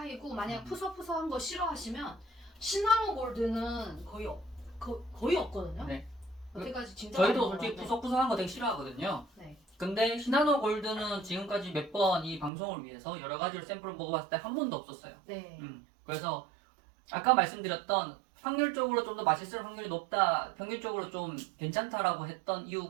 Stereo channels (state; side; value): drops out; left; at 12.5 s